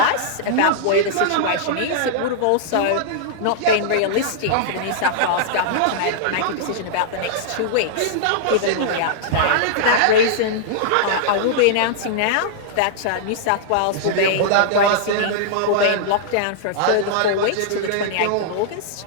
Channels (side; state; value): both; different; correlation -0.02